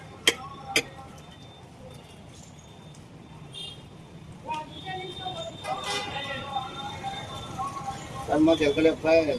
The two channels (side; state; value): both; identical; correlation 1.00